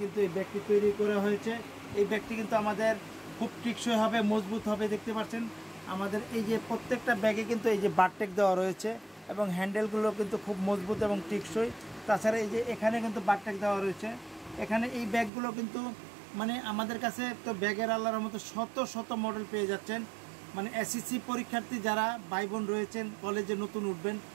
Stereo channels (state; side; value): drops out; left; at 15.3 s